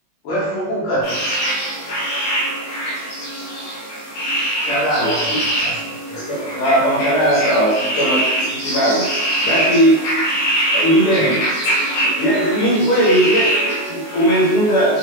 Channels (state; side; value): late; right; 19 ms